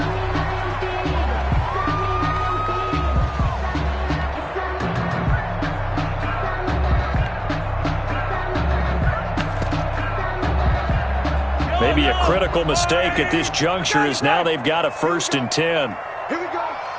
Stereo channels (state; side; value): identical; both; correlation 1.00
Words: Maybe a critical mistake at this juncture is now they've got a 1st and 10. Here we go.